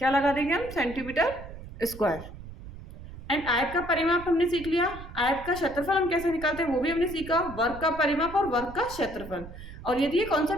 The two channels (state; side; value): noise; right; rumble, 14 dB below the sound